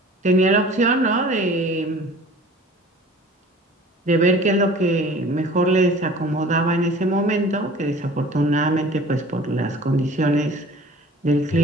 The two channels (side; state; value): both; normal; correlation 0.45